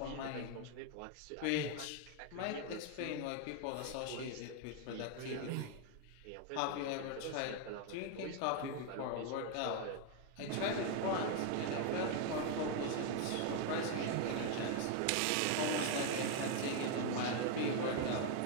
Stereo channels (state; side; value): different; both; correlation 0.01